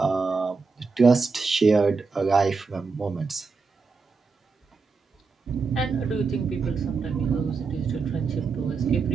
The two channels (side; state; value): left; quieter; 4.6 dB